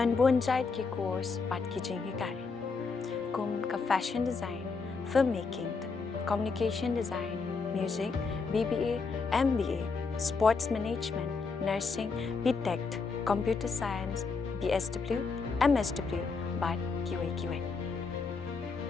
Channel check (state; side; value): quieter; right; 4.6 dB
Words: bonjait ki course pat ki jingikai. Kum ka fashion design, filmmaking, communication design, music, BBA, MBA, sports management, nursing, BTech, computer science, BSW, MSW, but QA.